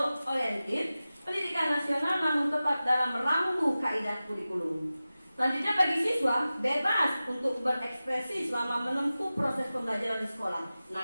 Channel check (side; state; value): both; inverted; correlation -0.95